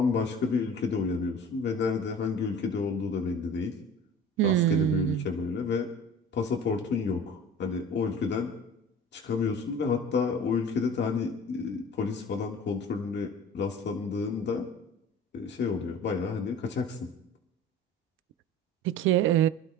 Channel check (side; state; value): both; normal; correlation 0.41